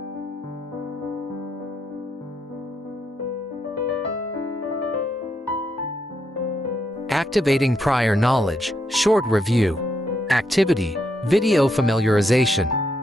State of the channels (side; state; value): both; normal; correlation 0.79